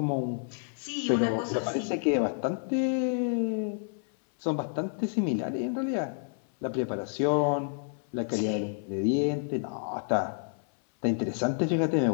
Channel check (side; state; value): right; silent; 58 dB below the other